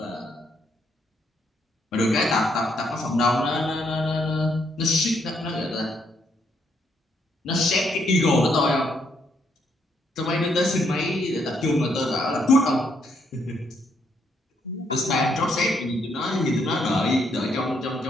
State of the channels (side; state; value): both; normal; correlation 0.73